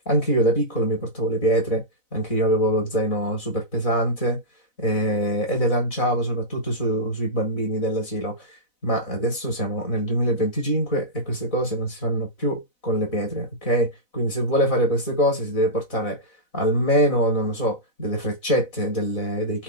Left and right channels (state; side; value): late; right; 4.0 ms